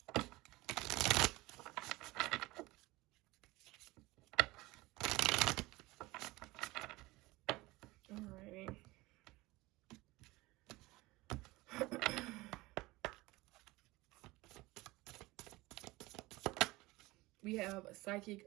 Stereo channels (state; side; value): quieter; left; 20.7 dB